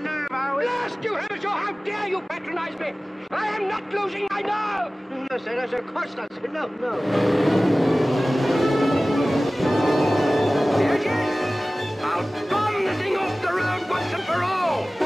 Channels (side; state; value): both; normal; correlation 0.98